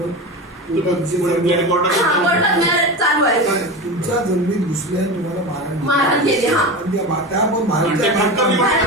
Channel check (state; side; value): normal; both; correlation 0.25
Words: चालू आहे. तुमच्या जमिनीत घुसल्या तुम्हाला मारहाण केली.